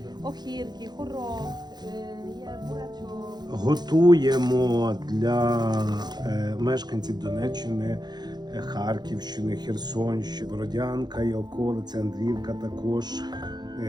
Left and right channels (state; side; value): late; left; 0.20 ms